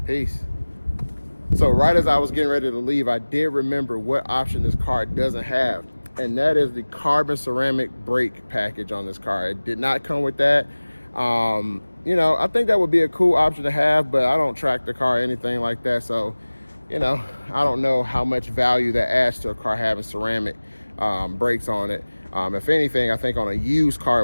peace. So right as I was getting ready to leave, I did remember what option this car doesn't have, and that is the carbon ceramic brake package on this car. It did not come with that. You know, I think that would be a cool option to have, but I don't track the car or anything like that. So, you know, I don't know how much value that adds to a car having ceramic brakes on it. If anything, I think on a used car,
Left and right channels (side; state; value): both; inverted; correlation -1.00